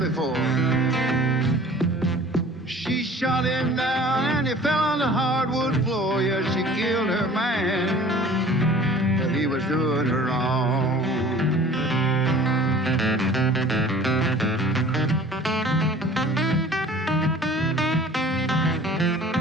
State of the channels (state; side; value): normal; both; correlation 0.47